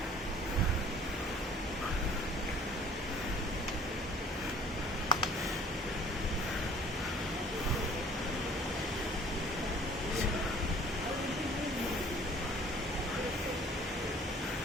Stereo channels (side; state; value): both; normal; correlation 0.52